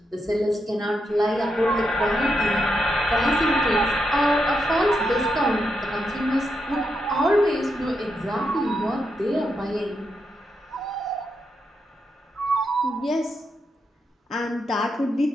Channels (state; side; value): normal; both; correlation 0.83